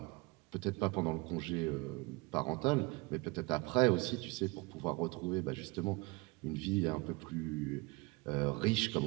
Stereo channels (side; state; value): left; quieter; 25.7 dB